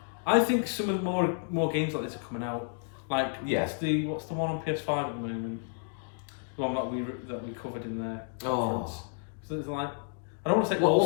I think some of the more games like this are coming out. Like, what's the one on PS5 at the moment? The one that we covered in the conference. So it's like, I don't want to say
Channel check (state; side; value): silent; right; digital silence